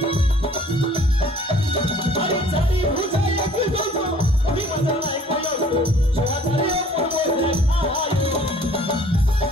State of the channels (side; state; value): both; normal; correlation 0.54